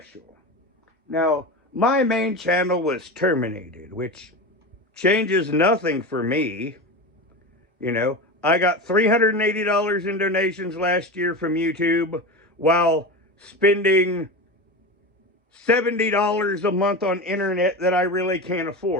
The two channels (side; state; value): both; normal; correlation 0.24